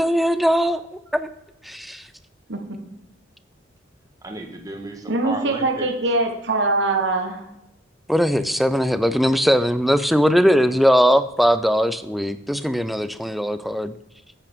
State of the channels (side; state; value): both; normal; correlation 0.75